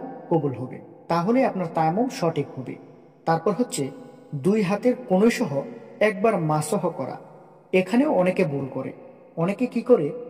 কবুল হবে, তাহলে আপনার তায়াম্মুম সঠিক হবে। তারপর হচ্ছে 2 হাতের কনুই সহ একবার মাসহ করা। এখানেও অনেকে ভুল করে। অনেকে কি করে,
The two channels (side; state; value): both; identical; correlation 1.00